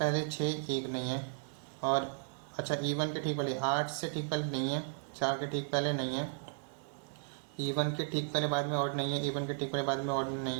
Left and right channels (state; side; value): silent; left; digital silence